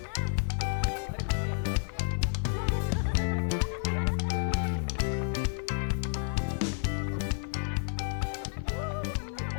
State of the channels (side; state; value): right; silent; digital silence